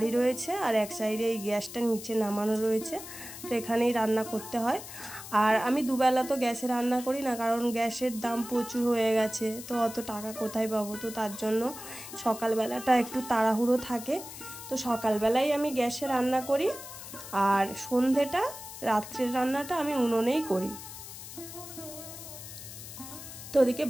রয়েছে আর এক সাইডে এই গ্যাসটা নিচে নামানো রয়েছে। তো এখানেই রান্না করতে হয়। আর আমি দুবেলা তো গ্যাসে রান্না করি না, কারণ গ্যাসের দাম প্রচুর হয়ে গেছে, তো অত টাকা কোথায় পাবো। তো তার জন্য সকালবেলাটা একটু তাড়াহুড়ো থাকে। তো সকালবেলাই আমি গ্যাসে রান্না করি, আর সন্ধেটা, রাত্রের রান্নাটা আমি উনুনেই করি। তো ওদিকে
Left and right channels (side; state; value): left; noise; hiss, 12 dB below the sound